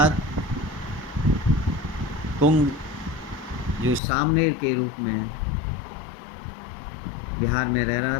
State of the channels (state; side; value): drops out; right; at 4.0 s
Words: कुंग जो सामनेर के रूप में बिहार में रह रहा